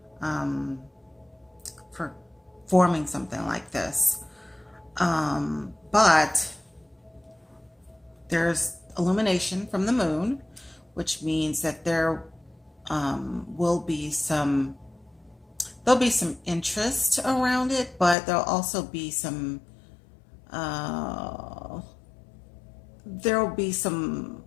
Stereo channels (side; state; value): right; drops out; at 18.2 s